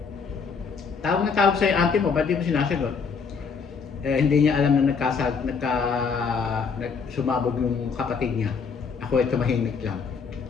Tawag na tawag sa'yo auntie mo, ba't di mo sinasagot? Eh, hindi niya alam na sumabog yung kapatid niya. Ako ay tumahimik lang.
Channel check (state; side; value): quieter; right; 5.6 dB